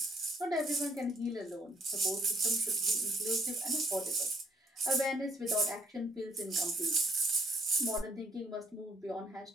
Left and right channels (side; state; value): both; normal; correlation 0.64